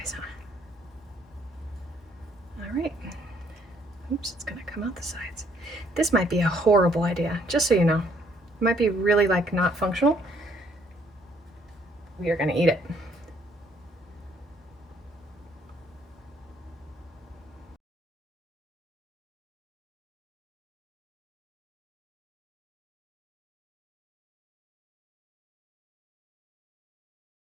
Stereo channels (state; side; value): normal; both; correlation 0.66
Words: huh? All right. Oops, it's gonna come out the sides. This might be a horrible idea, just so you know. It might be really like not functional. We are gonna eat it.